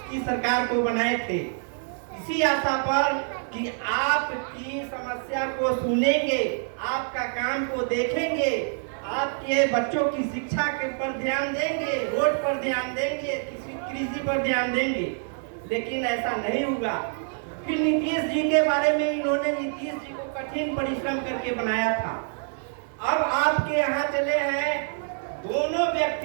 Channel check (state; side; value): silent; left; 61 dB below the other